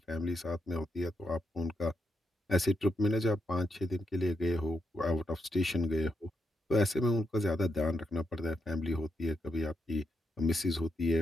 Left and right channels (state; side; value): normal; both; correlation 0.82